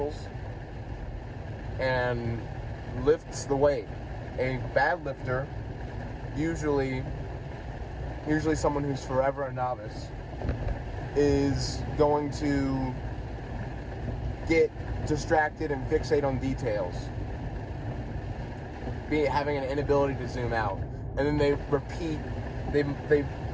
and lifts the weight. A bad lifter, usually someone who's forever a novice, is going to get distracted and fixate on details, having an inability to zoom out, and then they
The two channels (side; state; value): both; identical; correlation 1.00